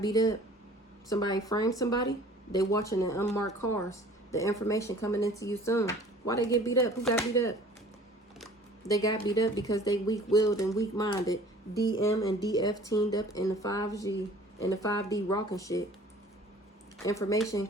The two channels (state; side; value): normal; both; correlation 0.49